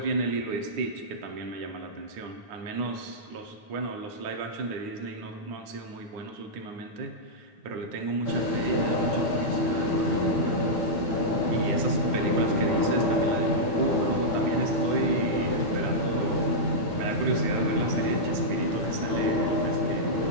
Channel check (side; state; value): left; late; 9.8 ms